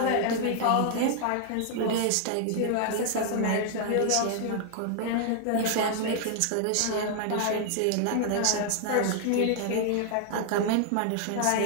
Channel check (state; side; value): different; both; correlation 0.00